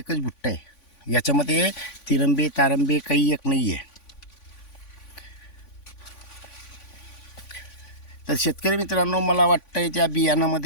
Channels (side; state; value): right; late; 3.5 ms